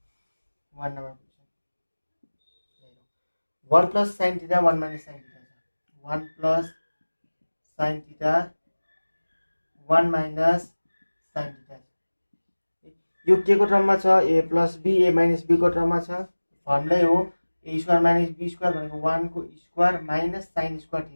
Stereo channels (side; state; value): both; inverted; correlation -1.00